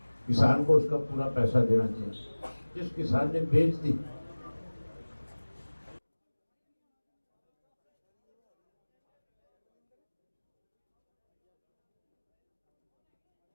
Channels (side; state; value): both; inverted; correlation -1.00